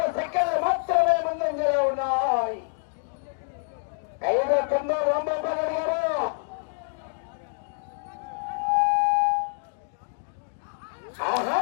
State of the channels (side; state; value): right; silent; digital silence